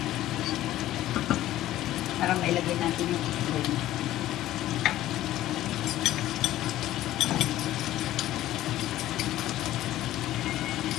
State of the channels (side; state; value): right; quieter; 14.3 dB